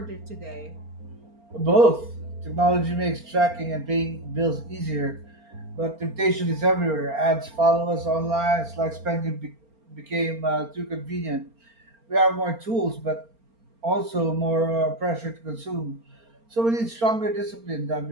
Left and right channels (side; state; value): left; late; 4.4 ms